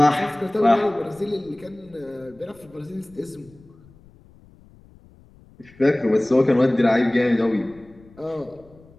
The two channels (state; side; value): noise; left; rumble, 26 dB below the sound